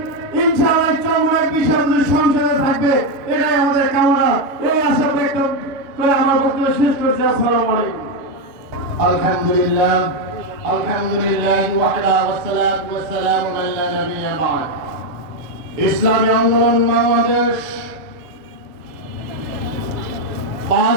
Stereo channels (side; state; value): left; late; 6.5 ms